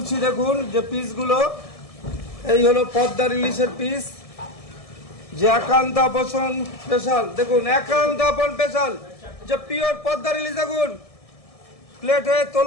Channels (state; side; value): late; right; 1.7 ms